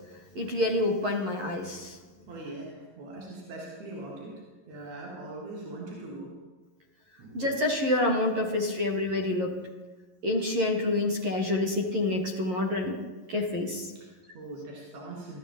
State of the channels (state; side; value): late; left; 11 ms